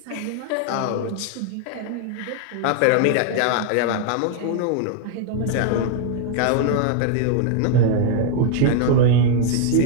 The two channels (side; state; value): both; different; correlation 0.00